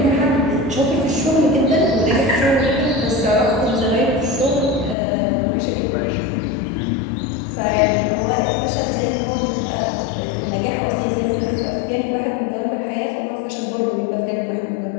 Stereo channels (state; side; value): drops out; right; at 5.0 s